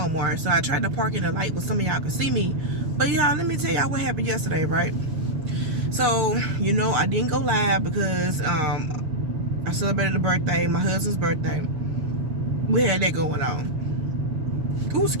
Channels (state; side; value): late; left; 6.6 ms